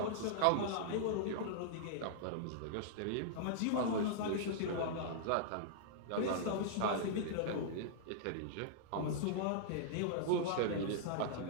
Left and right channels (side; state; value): both; different; correlation -0.02